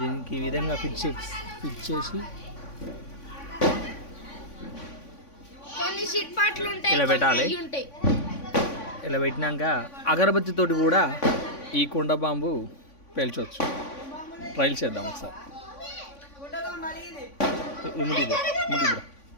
దీనికి ఈ విధంగా ఫిట్ చేసి ఇలా పెట్టాలి. ఇలా పెట్టినాక అగరబత్తితోటి కూడా ఈ కుండ బాంబు పేల్చవచ్చు. ట్రైల్ చేద్దాం ఒకసారి.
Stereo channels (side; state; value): right; late; 3.5 ms